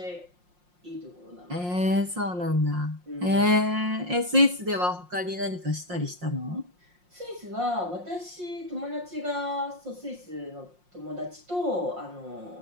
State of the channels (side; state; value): left; late; 5.6 ms